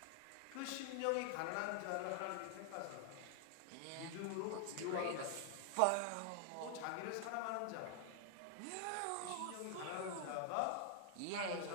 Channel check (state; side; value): different; both; correlation 0.00